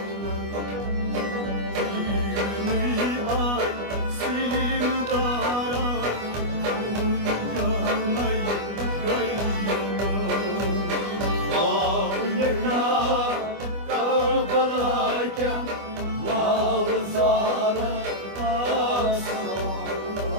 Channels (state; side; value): late; left; 25 ms